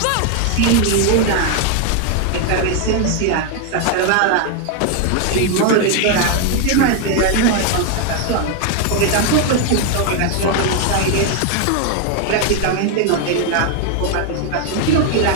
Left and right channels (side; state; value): both; different; correlation 0.01